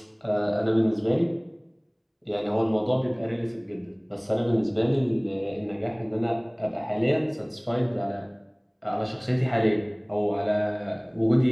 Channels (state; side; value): identical; both; correlation 1.00